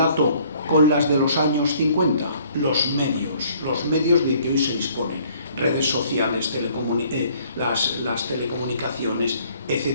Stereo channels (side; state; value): both; inverted; correlation -0.59